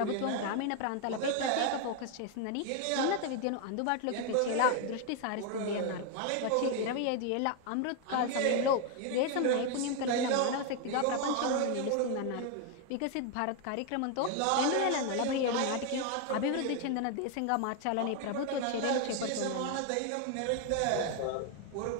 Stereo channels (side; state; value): both; different; correlation 0.01